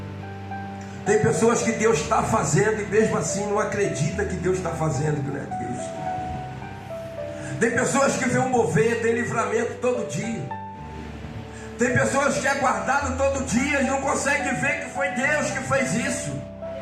Tem pessoas que Deus está fazendo e mesmo assim não acredita que Deus está fazendo, que não é Deus. Tem pessoas que vê um mover, tem livramento todo dia. Tem pessoas que é guardado todo dia e não conseguem ver que foi Deus que fez isso.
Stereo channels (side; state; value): both; identical; correlation 1.00